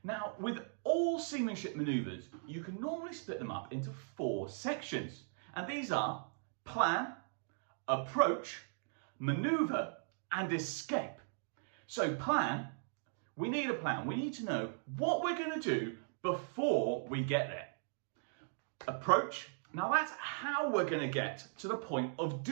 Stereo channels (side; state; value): left; silent; digital silence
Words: Now, with all seamanship maneuvers, you can normally split them up into 4 sections, and these are plan, approach, maneuver, and escape. So plan, we need a plan. We need to know what we're going to do before we get there. Approach, now that's how we're going to get to the point of